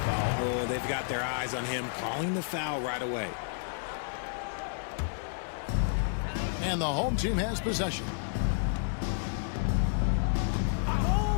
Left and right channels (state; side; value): silent; right; digital silence